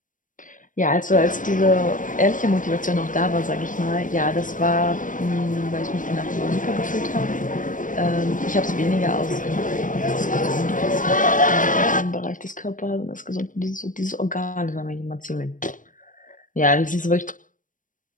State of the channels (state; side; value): late; right; 0.38 ms